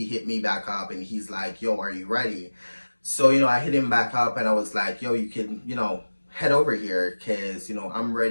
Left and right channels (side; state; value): both; inverted; correlation -1.00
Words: hit me back up and he's like, yo, are you ready? So, you know, I hit him back up and I was like, yo, you can, you know, head over here because, you know, I'm